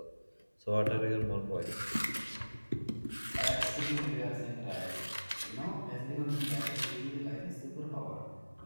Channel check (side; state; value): both; inverted; correlation -1.00